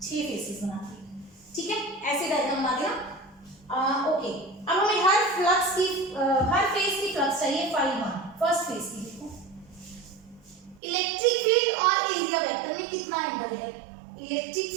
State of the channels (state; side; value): drops out; left; at 10.8 s